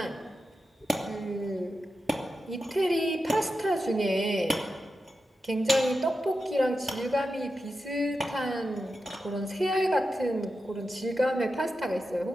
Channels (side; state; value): both; normal; correlation 0.90